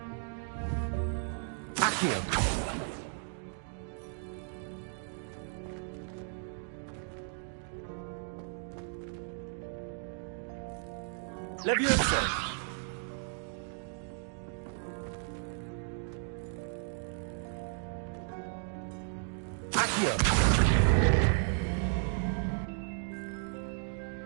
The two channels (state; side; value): silent; left; 55 dB below the other